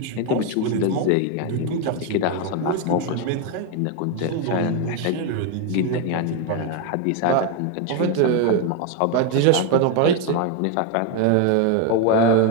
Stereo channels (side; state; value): both; different; correlation 0.02